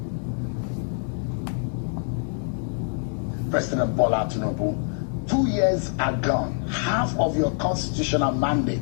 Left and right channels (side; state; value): right; silent; 59 dB below the other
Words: President Bola Tinubu, 2 years are gone. Half of your constitutional